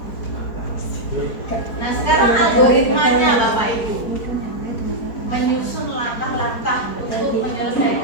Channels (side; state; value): right; late; 4.4 ms